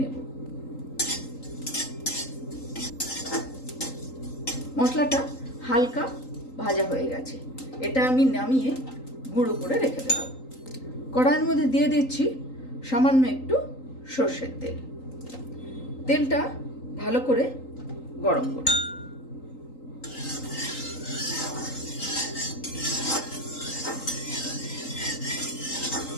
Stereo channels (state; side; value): late; right; 3.8 ms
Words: মশলাটা হালকা ভাজা হয়ে গেছে, এটা আমি নামিয়ে গুঁড়ো করে রেখে দেব। কড়াইয়ের মধ্যে দিয়ে দিচ্ছি সামান্য একটু সর্ষের তেল। তেলটা ভালো করে গরম করব।